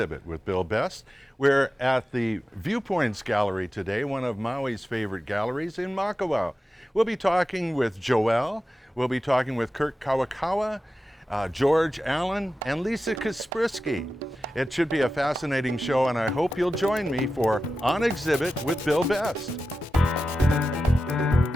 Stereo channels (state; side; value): normal; both; correlation 0.93